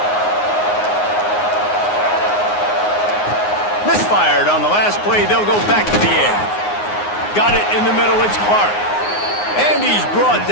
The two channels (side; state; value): right; late; 9.6 ms